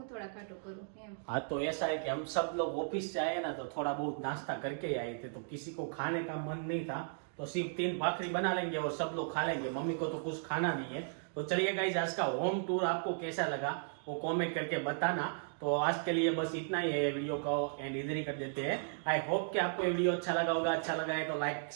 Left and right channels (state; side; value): silent; left; digital silence